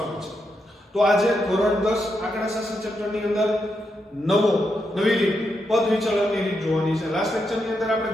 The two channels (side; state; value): both; normal; correlation 0.83